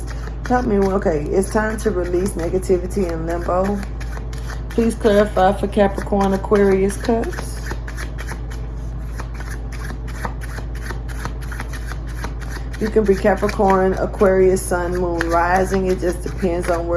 Help me. Okay, it's time to release negativity in limbo. Please clarify for Capricorn Aquarius Cusp. You can be Capricorn, Aquarius, Sun, Moon, Rising. It just depends on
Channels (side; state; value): both; identical; correlation 1.00